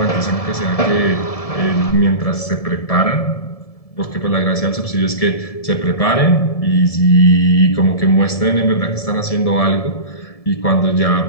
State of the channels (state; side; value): late; right; 1.7 ms